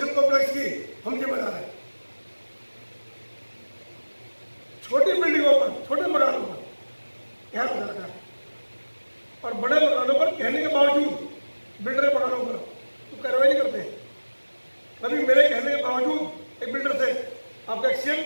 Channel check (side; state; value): both; inverted; correlation -1.00